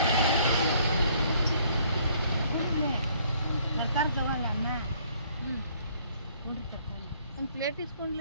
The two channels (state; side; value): inverted; both; correlation -0.63